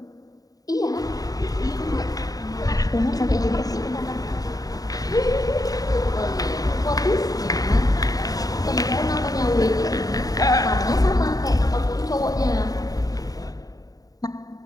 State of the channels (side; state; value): right; late; 0.18 ms